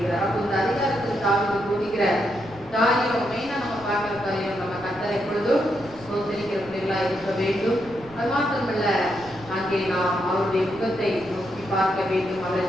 அப்போ இந்த அதிகாரத்தில் தாவீது போதிக்கிற காரியம் மெயினா நம்ம பார்க்கிற காரியம், நம்ம கர்த்தரை எப்பொழுதும் சோதரிக்கிற பிள்ளைகளா இருக்க வேண்டும். அது மாத்திரமல்ல, அங்கே நாம் அவருடைய முகத்தை நோக்கி பார்க்க வேண்டும், அவரை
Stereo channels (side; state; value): right; noise; rumble, 21 dB below the sound